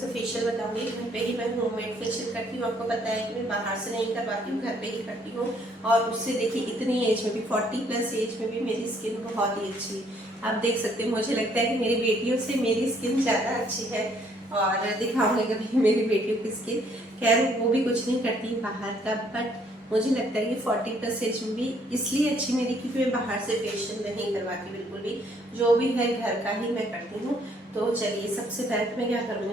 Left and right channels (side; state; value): both; normal; correlation 0.65